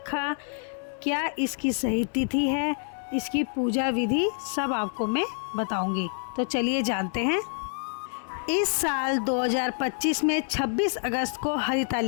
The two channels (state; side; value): silent; right; 59 dB below the other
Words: क्या इसकी सही तिथि है, इसकी पूजा विधि सब आपको मैं बताऊंगी। तो चलिए जानते हैं। इस साल 2025 में 26 अगस्त को